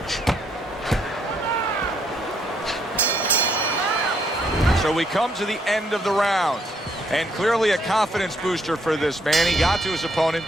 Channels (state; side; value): normal; both; correlation 0.72